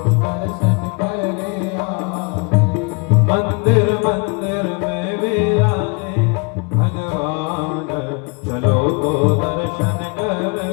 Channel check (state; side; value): quieter; right; 32.5 dB